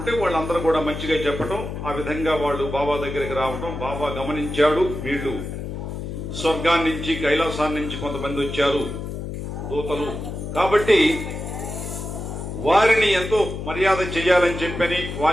వాళ్ళందరూ కూడా మంచిగా చెప్పటం, ఆ విధంగా వాళ్ళు బాబా దగ్గరికి రావటం. బాబా గమనించాడు, వీళ్ళు స్వర్గాన్ని నుంచి కైలాసాన్ని నుంచి కొంతమంది వచ్చారు దూతలు, కాబట్టి వారిని ఎంతో మర్యాద చేయాలని చెప్పని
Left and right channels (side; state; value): left; noise; hum, 6 dB below the sound